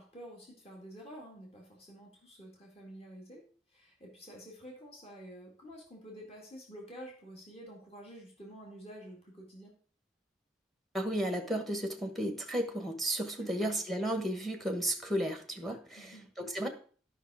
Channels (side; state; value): both; normal; correlation 0.70